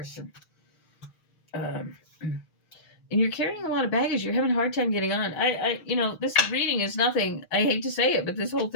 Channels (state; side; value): late; right; 6.4 ms